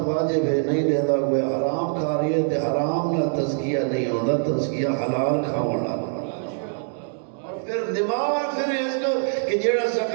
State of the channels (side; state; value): left; silent; digital silence